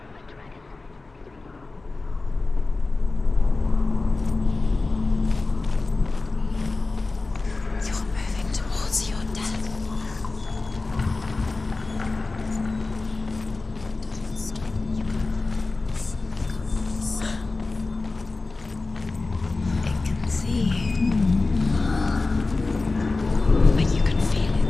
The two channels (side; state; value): right; quieter; 3.5 dB